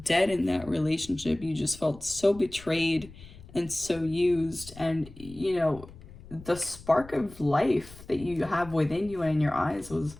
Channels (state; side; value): noise; left; rumble, 18 dB below the sound